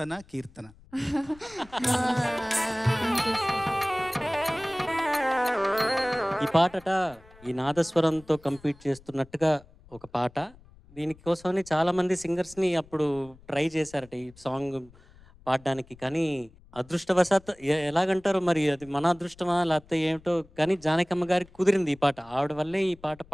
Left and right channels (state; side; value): noise; left; rumble, 25 dB below the sound